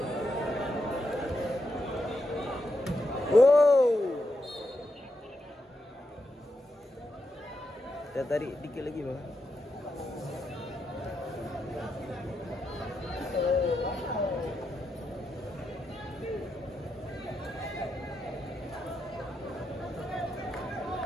kita tarik dikit lagi bang.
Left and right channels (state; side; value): normal; both; correlation 0.84